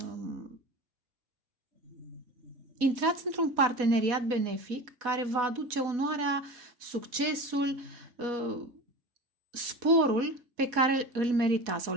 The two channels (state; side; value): late; left; 4.1 ms